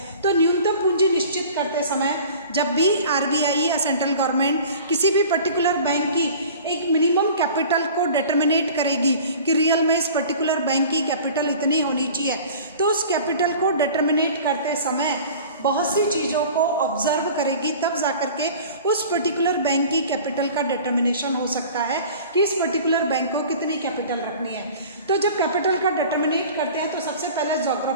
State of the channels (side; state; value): both; inverted; correlation -0.43